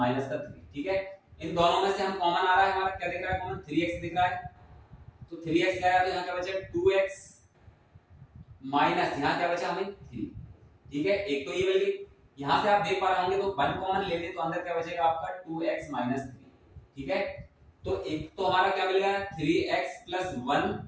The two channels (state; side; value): identical; both; correlation 1.00